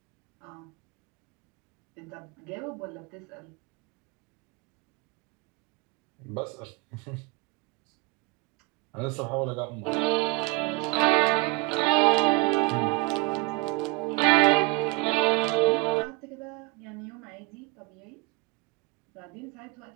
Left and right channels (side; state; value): left; quieter; 25.3 dB